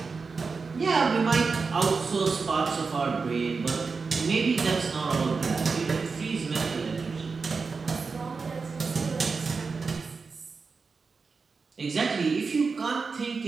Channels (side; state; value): left; quieter; 4.7 dB